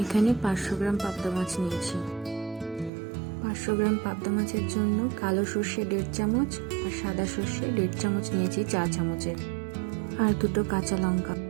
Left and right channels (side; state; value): left; drops out; at 2.9 s